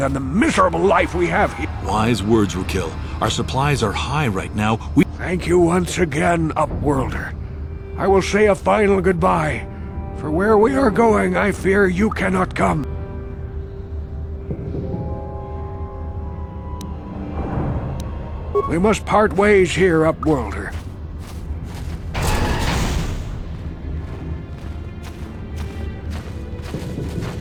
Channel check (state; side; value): identical; both; correlation 1.00